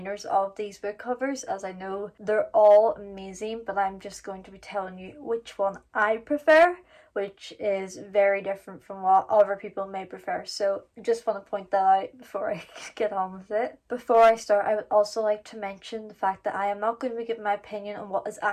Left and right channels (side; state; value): both; identical; correlation 1.00